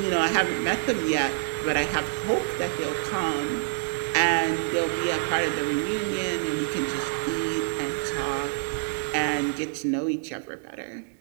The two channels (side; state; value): left; silent; 60 dB below the other